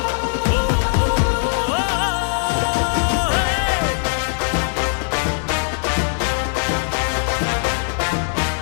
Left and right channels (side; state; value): right; silent; digital silence